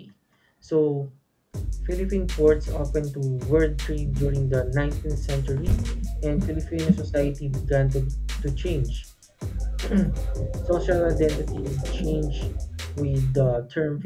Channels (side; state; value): both; identical; correlation 1.00